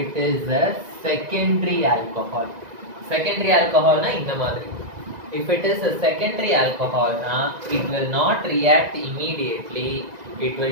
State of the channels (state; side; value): late; left; 1.9 ms